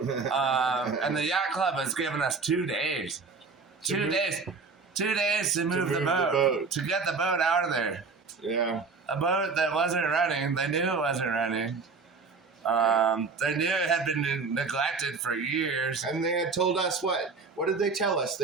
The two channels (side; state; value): left; quieter; 4.6 dB